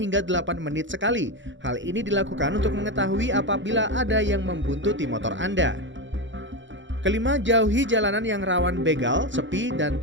8 menit sekali. Hal ini dilakukan untuk mengetahui apabila ada yang membuntuti motor Anda. Kelima, jauhi jalanan yang rawan begal, sepi, dan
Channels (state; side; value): late; left; 0.54 ms